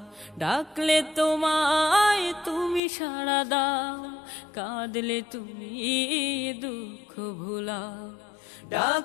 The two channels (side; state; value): right; drops out; at 2.8 s